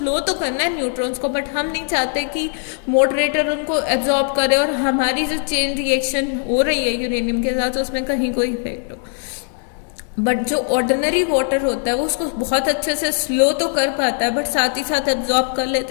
तो करना है न्यूट्रॉन्स को, बट हम नहीं चाहते कि मॉडरेटर उनको एब्जॉर्ब करे और हमारी जो चेन रिएक्शन हो रही है यूरेनियम के साथ उसमें कहीं कोई इफेक्ट हो। बट जो ऑर्डिनरी वाटर होता है वो उसको बहुत अच्छे से स्लो तो कर पाता है बट साथ ही साथ एब्जॉर्ब कर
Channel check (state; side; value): silent; right; 55 dB below the other